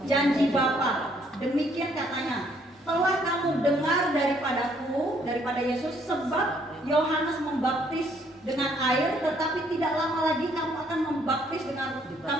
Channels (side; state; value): both; normal; correlation 0.67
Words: Janji Bapa. Demikian katanya, telah kamu dengar daripada Yesus, sebab Yohanes membaptis dengan air, tetapi tidak lama lagi kamu akan